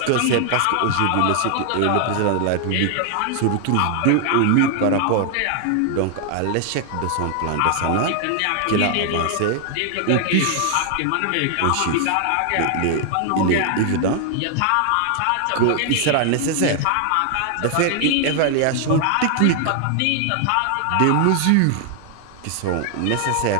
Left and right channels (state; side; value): different; both; correlation 0.00